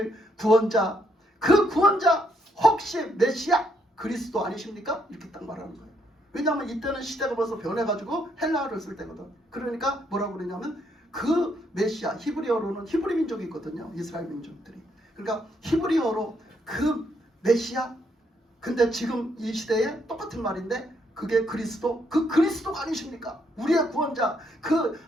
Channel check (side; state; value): both; normal; correlation 0.74